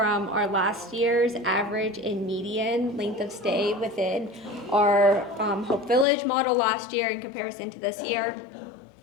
our last year's average and median length of stay within our Hope Village model last year in comparison to this year.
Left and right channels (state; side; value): drops out; right; at 6.1 s